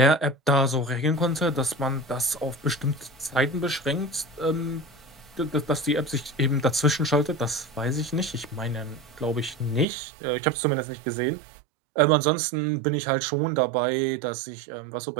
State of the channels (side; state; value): left; drops out; at 9.9 s